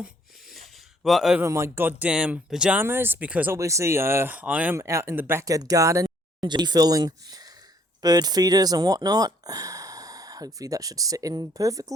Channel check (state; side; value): normal; both; correlation 0.63